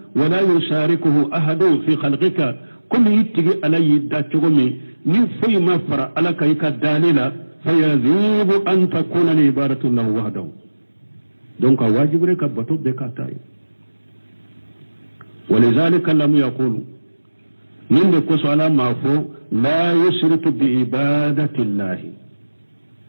wala yusharikuhu ahadun fi khalqika kullu itigi ala yidda chogomi ni fuy ma fara ala kayka dalila fayazibu an takuna li ibadatu lahu wahdahu donc wajibu rek bato be ka tay ولذلك لم يقول من كوس على ما فو لا يشرك بعبادة الله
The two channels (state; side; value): inverted; both; correlation -1.00